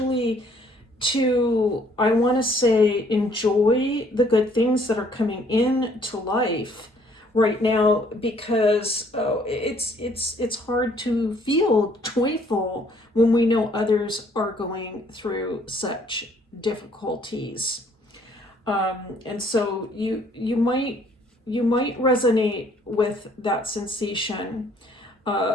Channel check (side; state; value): both; normal; correlation 0.62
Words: to, I want to say, enjoy the good things that are coming into life right now, because it's hard to feel joyful when we know others are going through such difficulties. And so you might resonate with that sensation,